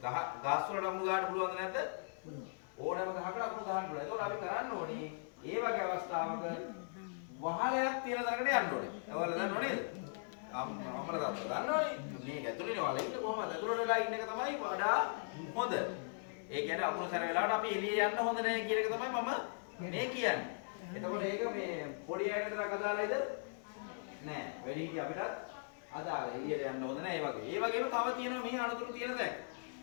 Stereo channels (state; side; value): silent; right; digital silence